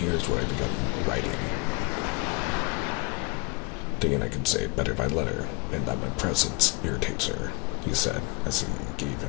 what I begun writing. Thinking I could say it better by letter, and that my presence irritates her, he said, as he gave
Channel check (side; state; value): right; quieter; 27.5 dB